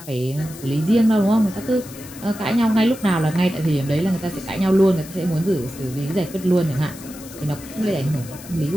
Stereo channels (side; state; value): left; noise; hiss, 17 dB below the sound